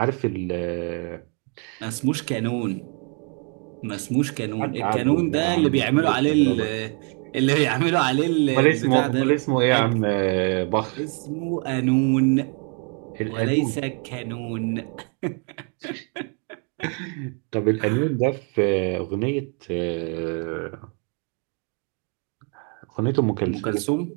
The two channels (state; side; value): quieter; left; 38.2 dB